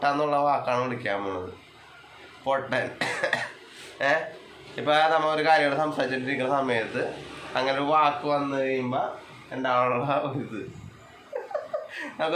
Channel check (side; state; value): both; identical; correlation 1.00